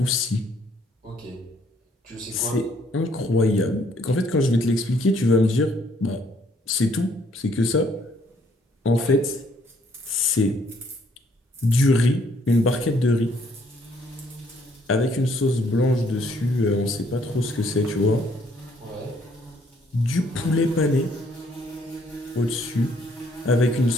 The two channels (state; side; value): normal; both; correlation 0.66